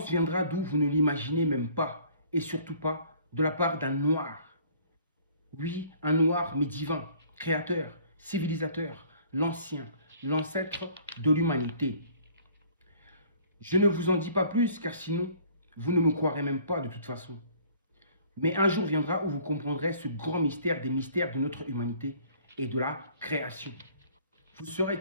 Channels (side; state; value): both; inverted; correlation -0.55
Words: viendra d'où vous ne l'imaginez même pas, et surtout pas de la part d'un noir. Oui, un noir mais divin, créateur, civilisateur, l'ancien, l'ancêtre de l'humanité. Je ne vous en dis pas plus, car sinon, vous ne me croirez même pas de toute façon. Mais un jour viendra où vous comprendrez ce grand mystère des mystères de notre humanité et de la création. Vous saurez